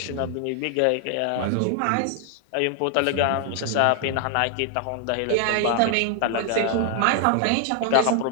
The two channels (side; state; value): both; different; correlation 0.00